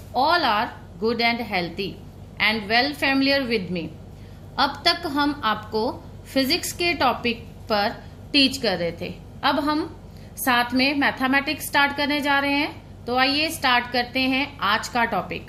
all are good and healthy and well familiar with me. अब तक हम आपको फिजिक्स के टॉपिक पर टीच कर रहे थे. अब हम साथ में मैथमेटिक्स स्टार्ट करने जा रहे हैं. तो आइए स्टार्ट करते हैं आज का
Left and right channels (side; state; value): both; identical; correlation 1.00